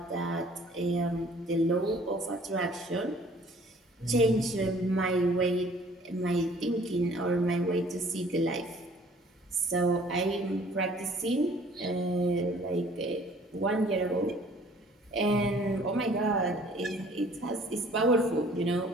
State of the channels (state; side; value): normal; both; correlation 0.55